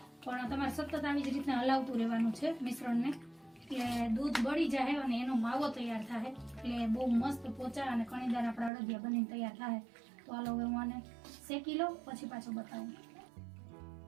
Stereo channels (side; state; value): left; drops out; at 8.7 s